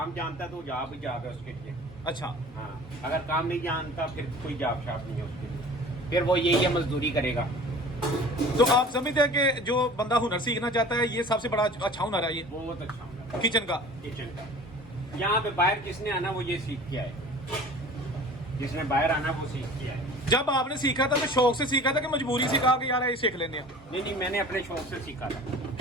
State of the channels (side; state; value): both; normal; correlation 0.43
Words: जानता है तो जॉब ही जॉब है उसके लिए। अच्छा हाँ, अगर काम नहीं जानता फिर कोई जॉब शॉप नहीं है उसके लिए, फिर वो यही है मजदूरी करेगा। तो आप समझते हैं कि जो बंदा हुनर सीखना चाहता है, ये सबसे बड़ा अच्छा हुनर है ये बहुत अच्छा हुनर किचन का। यहाँ पे बाहर किसने आना वो ये सीख के आए, जिसने बाहर आना वो सीख के आए। जब आपने सीखा था तो शौक से सीखा था कि मजबूरी से कहा कि यार ये सीख लेने हैं? नहीं, मैंने अपने शौक से सीखा था